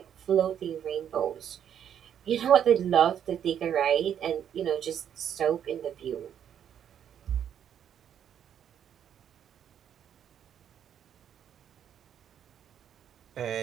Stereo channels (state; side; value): quieter; left; 9.2 dB